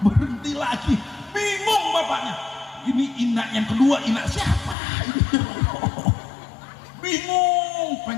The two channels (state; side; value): drops out; right; at 4.8 s